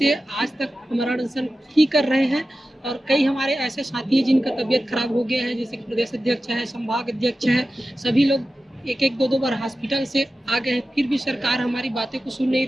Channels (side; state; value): both; normal; correlation 0.94